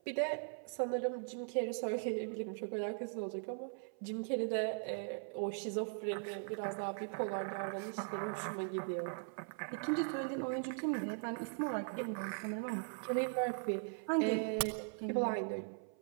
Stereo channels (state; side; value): silent; left; 51 dB below the other